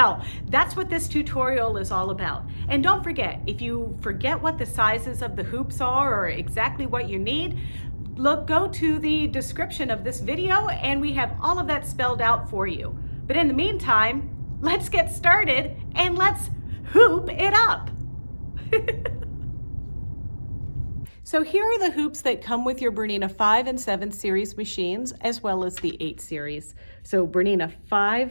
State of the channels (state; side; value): inverted; both; correlation -1.00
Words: that's what this tutorial is all about. And don't forget, if you forget what the sizes of the hoops are or exactly what you need, go to the description of this video and we have all of that spelled out for you. But in the meantime, let's get started and let's hoop it up. So here are the hoops that come with your BERNINA 5 and 7 series machines, as well as the 8 series. So BERNINA